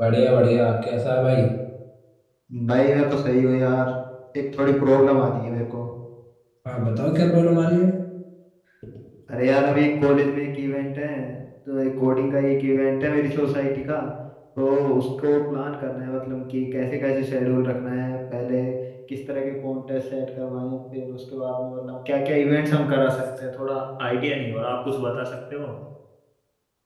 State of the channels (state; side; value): identical; both; correlation 1.00